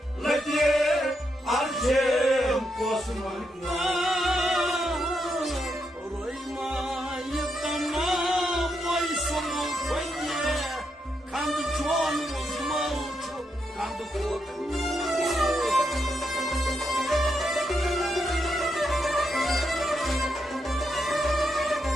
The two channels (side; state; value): both; normal; correlation 0.82